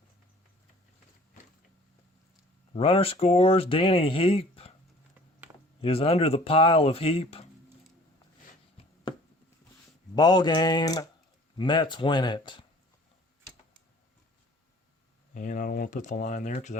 Runner scores. Danny Heap is under the pile of Heap. Ball game. Mets win it. And I don't want to put the line there because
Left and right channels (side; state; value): both; normal; correlation 0.51